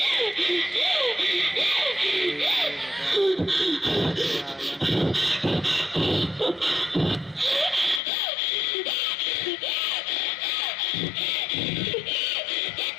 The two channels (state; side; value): drops out; right; at 8.0 s